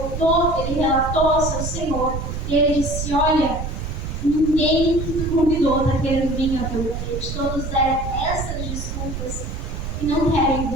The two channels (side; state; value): right; noise; rumble, 5 dB below the sound